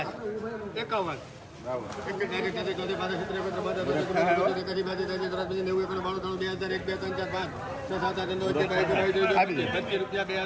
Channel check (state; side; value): identical; both; correlation 1.00